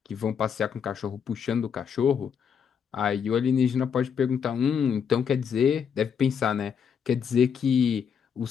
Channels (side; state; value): right; quieter; 7.3 dB